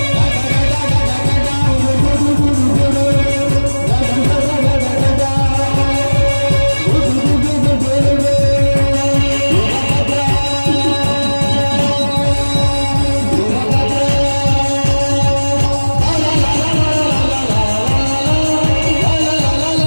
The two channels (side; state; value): both; inverted; correlation -1.00